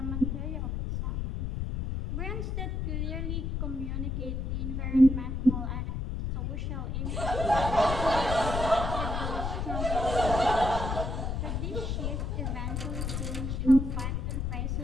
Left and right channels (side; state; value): left; noise; rumble, 2 dB below the sound